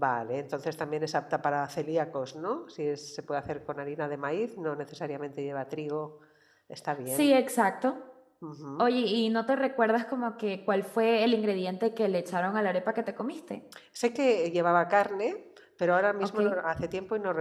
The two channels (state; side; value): identical; both; correlation 1.00